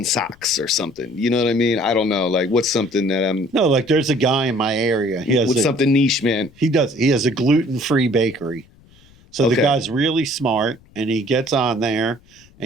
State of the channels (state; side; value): noise; left; rumble, 28 dB below the sound